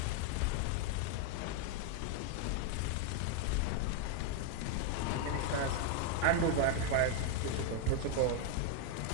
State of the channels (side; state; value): both; different; correlation 0.01